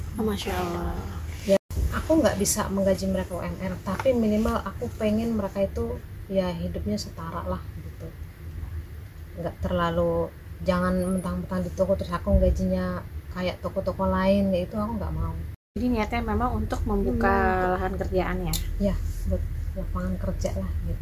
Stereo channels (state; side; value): identical; both; correlation 1.00